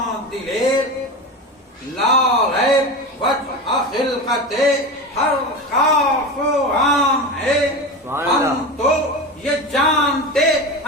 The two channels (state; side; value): normal; both; correlation 0.24